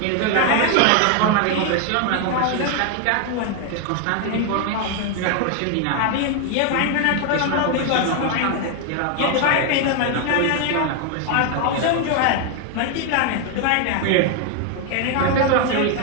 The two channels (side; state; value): both; different; correlation 0.01